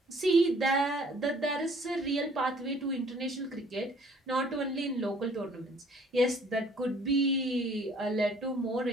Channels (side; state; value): both; normal; correlation 0.57